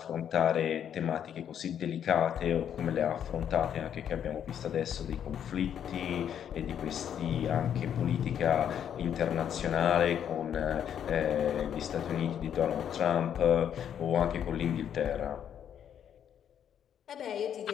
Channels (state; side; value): quieter; right; 9.1 dB